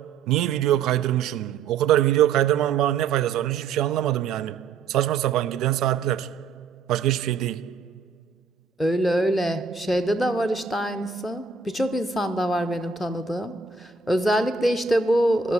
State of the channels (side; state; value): left; quieter; 5.2 dB